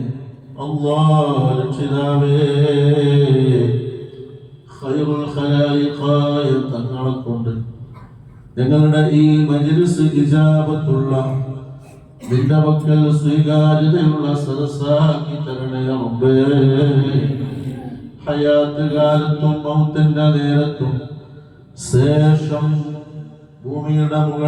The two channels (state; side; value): identical; both; correlation 1.00